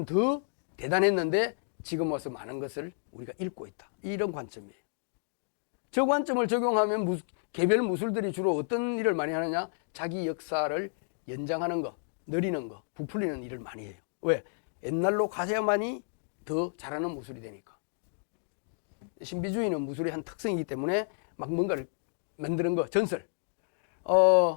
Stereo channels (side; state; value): right; silent; digital silence